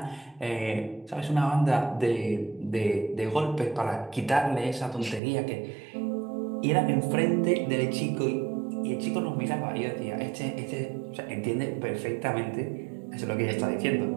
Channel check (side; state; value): left; drops out; at 5.2 s